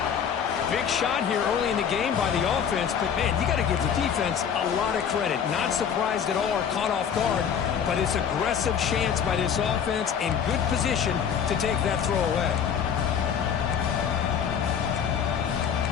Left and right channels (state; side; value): quieter; right; 7.8 dB